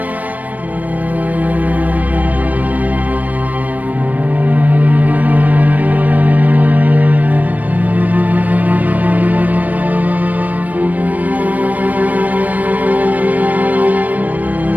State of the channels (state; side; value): late; left; 0.076 ms